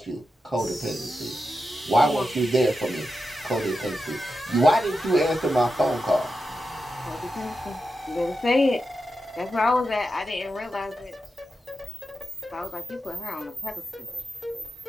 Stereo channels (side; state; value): both; normal; correlation 0.89